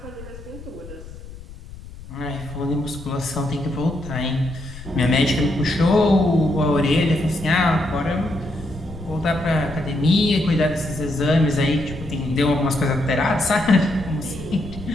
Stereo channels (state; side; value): noise; left; rumble, 15 dB below the sound